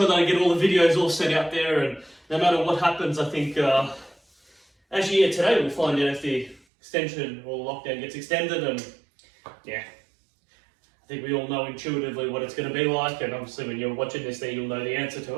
that I get all the videos all set out there, and no matter what happens, I think, actually, yeah, today we'll find out if the extension or lockdown gets extended, and yeah, I think we all know intuitively what it's going to be like, and obviously when you're watching this there, you'll know the answer to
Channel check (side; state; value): left; drops out; at 6.6 s